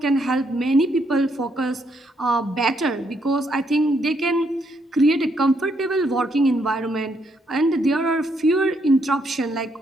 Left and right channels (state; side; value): normal; both; correlation 0.74